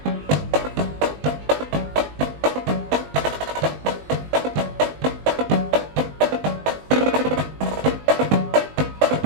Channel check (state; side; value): late; left; 20 ms